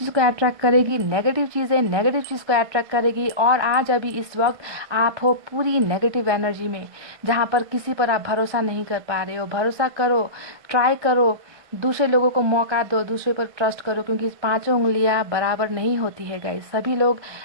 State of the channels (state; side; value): late; left; 1.5 ms